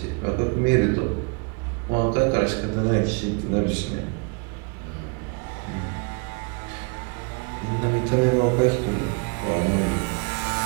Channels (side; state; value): left; quieter; 33.5 dB